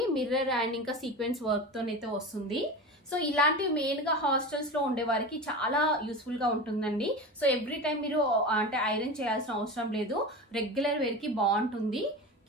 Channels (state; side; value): normal; both; correlation 0.28